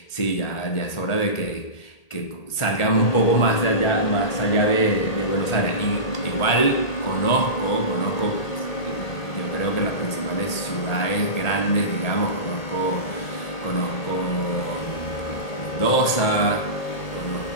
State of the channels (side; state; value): right; late; 1.8 ms